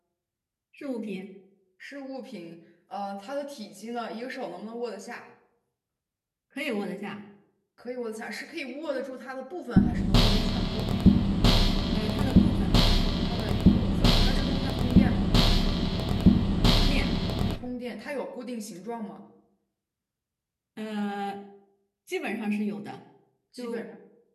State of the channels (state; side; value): identical; both; correlation 1.00